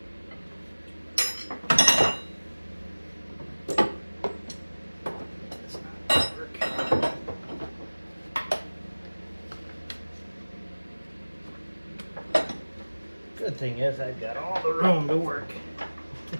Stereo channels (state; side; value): inverted; both; correlation -1.00